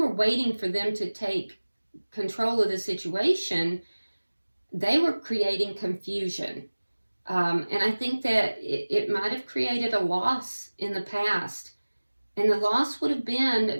waiting for them to take control of the situation, they were creating confusion. And I think that it might have created a loss in the past. And the loss would have been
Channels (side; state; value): both; inverted; correlation -1.00